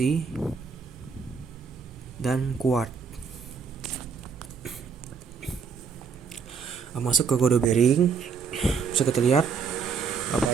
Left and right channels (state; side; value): quieter; left; 5.8 dB